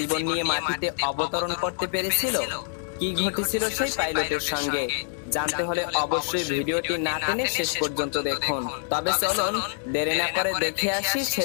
নিয়ে মাটিতে অবতরণ করতে পেরেছিল? কি ঘটেছিল সেই পাইলটের সঙ্গে জানতে হলে অবশ্যই ভিডিওটি না টেনে শেষ পর্যন্ত দেখুন। তবে চলুন দেরি না করে দেখে আসি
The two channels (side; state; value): right; silent; digital silence